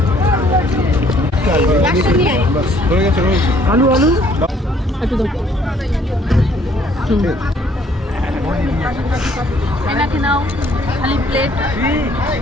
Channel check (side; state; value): both; normal; correlation 0.62